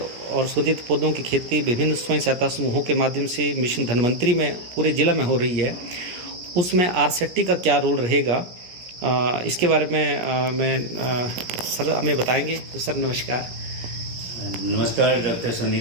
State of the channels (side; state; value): left; late; 17 ms